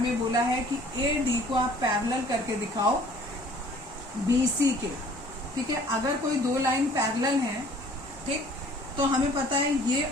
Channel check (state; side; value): normal; both; correlation 0.53